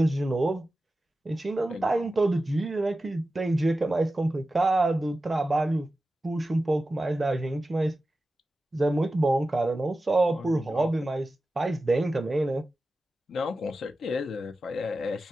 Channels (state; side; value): normal; both; correlation 0.94